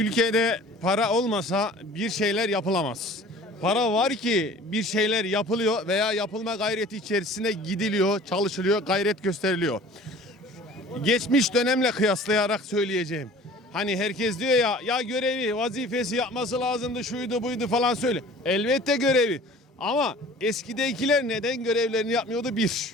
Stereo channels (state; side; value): normal; both; correlation 0.46